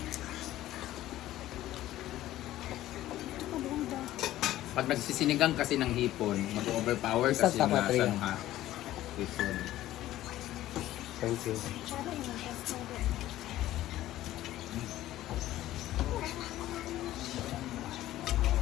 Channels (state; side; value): quieter; right; 14.5 dB